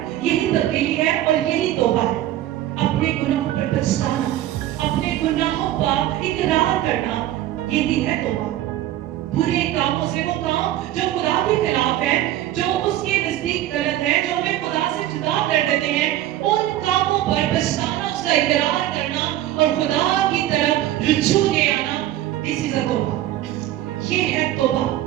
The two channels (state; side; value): quieter; left; 13.5 dB